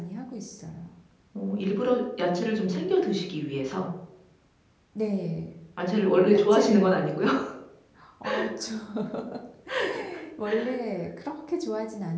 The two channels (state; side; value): identical; both; correlation 1.00